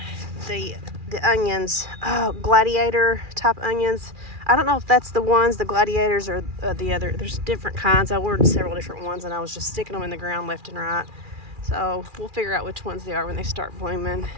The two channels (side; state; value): left; late; 2.4 ms